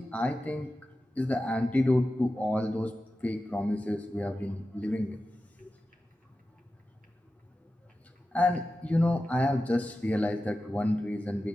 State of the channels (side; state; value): both; normal; correlation 0.93